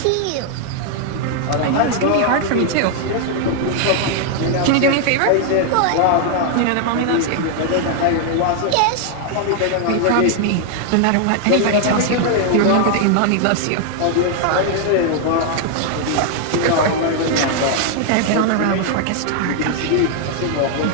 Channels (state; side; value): different; both; correlation 0.00